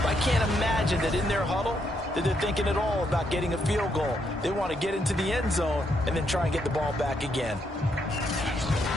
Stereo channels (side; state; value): both; normal; correlation 0.77